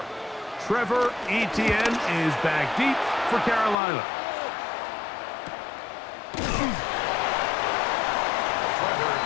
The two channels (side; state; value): right; drops out; at 3.8 s